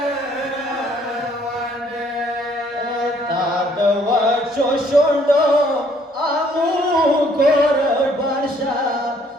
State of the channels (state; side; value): normal; both; correlation 0.63